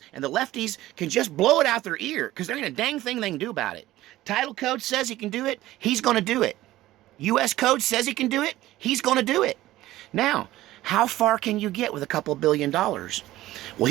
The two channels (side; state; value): left; quieter; 15.9 dB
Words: and the lefties can just blow it out their ear, because there ain't a dang thing they can do about it. Title code says he can do it, he's going to do it. U.S. code says he can do it, he's going to do it. Now, how far can you get with a couple $billion? Well,